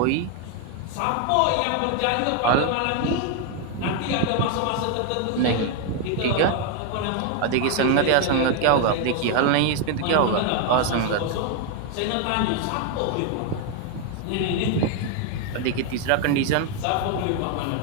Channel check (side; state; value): both; different; correlation 0.01